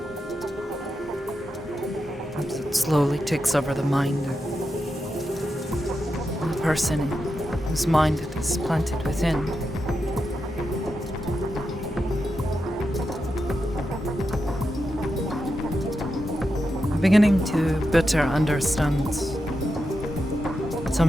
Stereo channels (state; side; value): normal; both; correlation 0.87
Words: As it slowly takes over the mind of the person whose mind it is planted within. I'm beginning to better understand